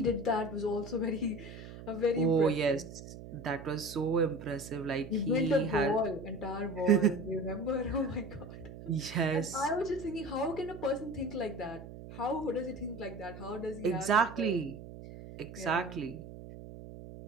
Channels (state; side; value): noise; right; hum, 13 dB below the sound